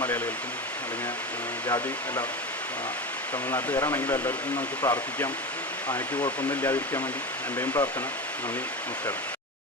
മലയാളികൾക്കും അല്ലെങ്കിൽ ജാതി എല്ലാ തമിഴ്നാട്ടുകാരാണെങ്കിലും എല്ലാവർക്കും നമുക്ക് പ്രാർത്ഥിക്കാം, ആനയ്ക്ക് കുഴപ്പമൊന്നും ഇല്ലാതിരിക്കാൻ വേണ്ടി. എൻ്റെയും പ്രാർത്ഥന. നന്ദി, നമസ്കാരം.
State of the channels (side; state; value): both; normal; correlation 0.24